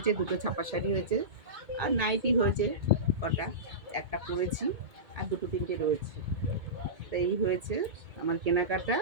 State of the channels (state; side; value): late; left; 2.2 ms